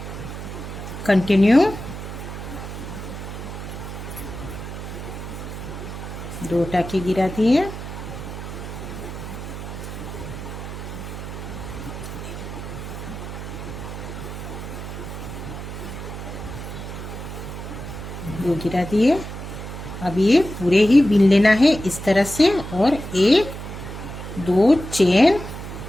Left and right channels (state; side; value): noise; right; hum, 9 dB below the sound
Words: कंटिन्यू, 2 टाके गिरा दिए। दो गिरा दिए। अब ये पूरे ही बिन लेना है इस तरह से। और 1 2 चेन,